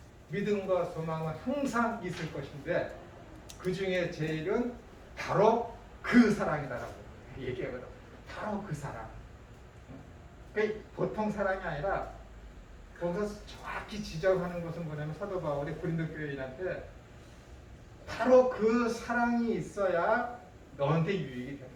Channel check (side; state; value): both; identical; correlation 1.00